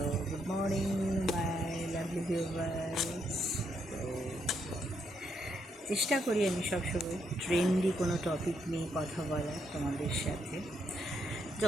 good morning, my lovely viewers. তো চেষ্টা করি আমি সবসময় ট্রেন্ডি কোনো টপিক নিয়ে কথা বলার তোমাদের সাথে,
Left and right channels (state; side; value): normal; both; correlation 0.77